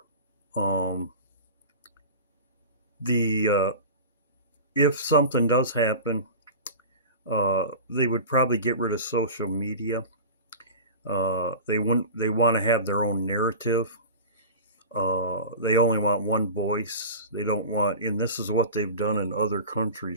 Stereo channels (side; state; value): both; inverted; correlation -0.33